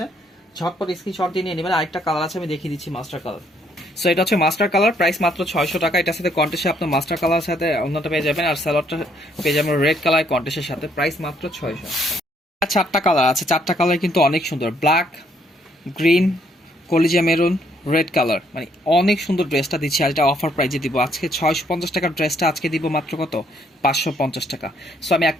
ঝটপট স্ক্রিনশট দিয়ে নিয়ে নেবেন। আরেকটা কালার আছে, আমি দেখিয়ে দিচ্ছি, মাস্টার কালার। সো এটা হচ্ছে মাস্টার কালার, প্রাইস মাত্র 600 টাকা। এটার সাথে কন্টেস্টে আপনার মাস্টার কালার সাথে অন্যটা পেয়ে যাবেন, আর স্যালোয়ারটা পেয়ে যাবেন রেড কালার কন্টেস্টের সাথে। প্রাইস মাত্র 600। 4টা কালার আছে, 4টা কালার কিন্তু অনেক সুন্দর। ব্ল্যাক, গ্রিন, কলিজা মেরুন, রেড কালার, মানে অনেক সুন্দর ড্রেসটা দিচ্ছি। আর এটা অফার প্রাইজে দিব আজকে। 650 টাকার ড্রেসটা আজকে দিব মাত্র কত, 550 টাকা। সো আমি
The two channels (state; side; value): normal; both; correlation 0.69